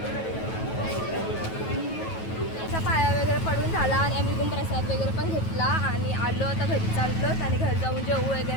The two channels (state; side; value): late; right; 9.2 ms